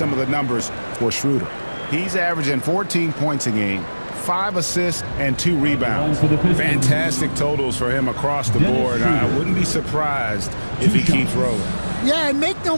of the numbers for Schroeder. He's averaging 14 points a game, 5 assists, and 2 rebounds. Fantastic totals for him across the board. I wouldn't be surprised if he keeps rolling. Yeah, and make no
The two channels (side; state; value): both; inverted; correlation -1.00